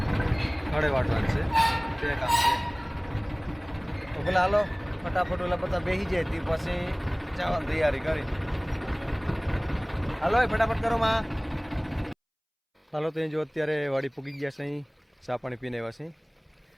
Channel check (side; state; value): both; identical; correlation 1.00